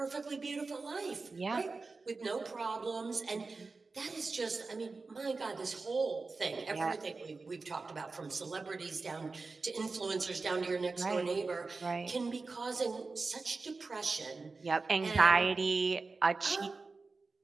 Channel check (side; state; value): left; quieter; 4.0 dB